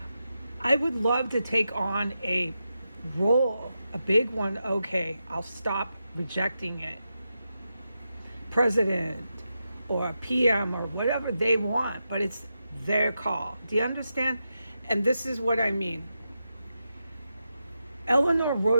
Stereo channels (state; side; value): inverted; both; correlation -0.87